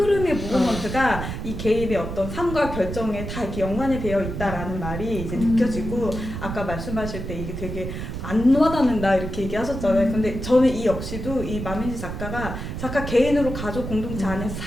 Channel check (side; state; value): right; noise; rumble, 6 dB below the sound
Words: 무브먼트가 이 개인의 어떤 삶과 결정에 다 이렇게 연관이 되어 있다라는 말이 이제 느껴지고 아까 말씀하실 때 이게 되게 안 와닿는다 이렇게 얘기하셨잖아요. 근데 저는 이 역시도 이 마민지 작가 개인으로 가족 공동체 안에서